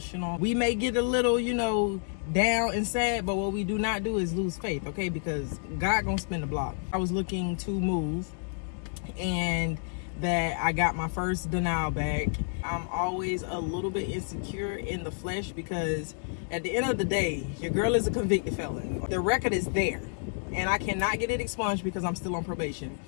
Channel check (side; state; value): right; silent; 58 dB below the other